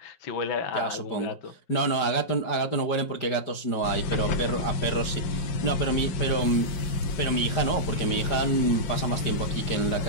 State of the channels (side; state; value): right; late; 5.0 ms